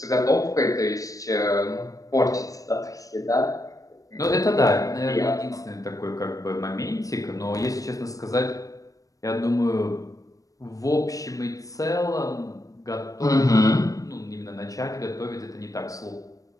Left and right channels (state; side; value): late; right; 0.16 ms